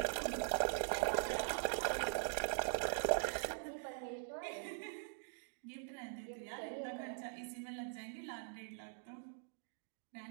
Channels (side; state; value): left; silent; digital silence